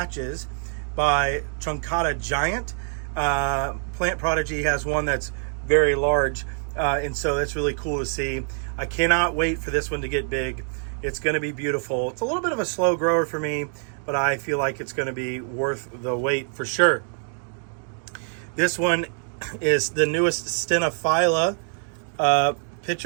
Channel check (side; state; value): left; silent; 58 dB below the other